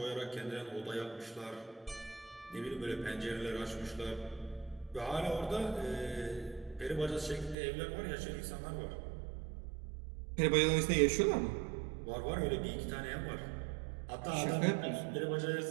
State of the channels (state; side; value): drops out; left; at 7.6 s